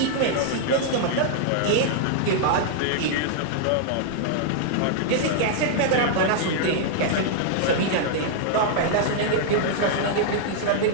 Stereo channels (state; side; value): different; both; correlation -0.01